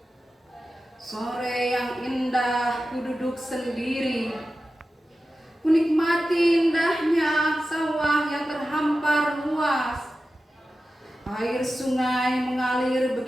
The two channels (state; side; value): normal; both; correlation 0.93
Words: Sore yang indah, ku duduk sendiri, ku nikmati indahnya sawah yang terhampar luas. Air sungai mengalir